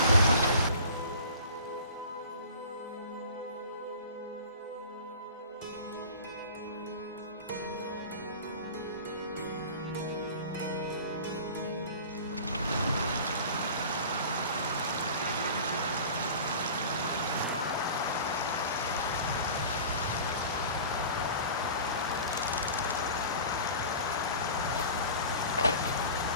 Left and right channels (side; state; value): both; inverted; correlation -0.40